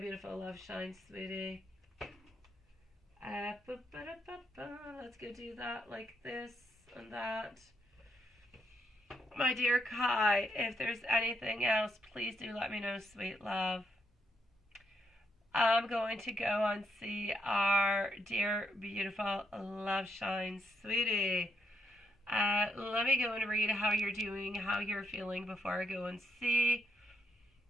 love shine, sweetie. Let's go do that like this and that. My dear Kai, if there's anything else, please do let me know, sweet love. I'm going to go and see our dear, beautiful love shine, sweetie. Let me go and read how you're doing, how you're feeling before I go and see.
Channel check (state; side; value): normal; both; correlation 0.78